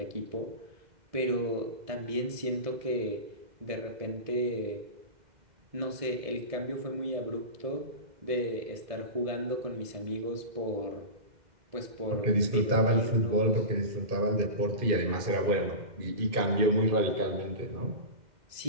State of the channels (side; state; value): left; late; 2.1 ms